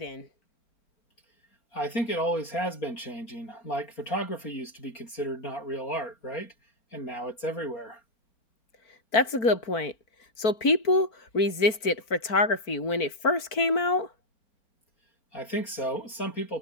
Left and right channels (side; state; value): right; late; 4.5 ms